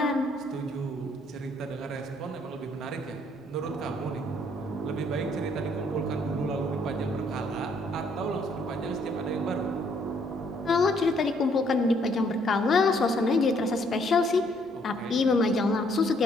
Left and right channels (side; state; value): both; normal; correlation 0.67